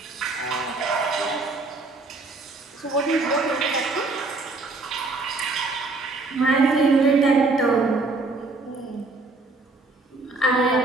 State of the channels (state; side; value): quieter; left; 3.5 dB